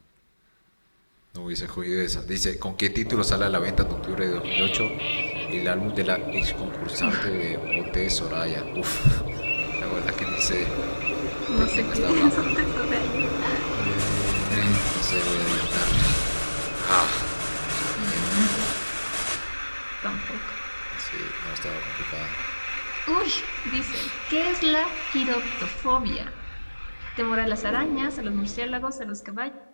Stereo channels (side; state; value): both; inverted; correlation -1.00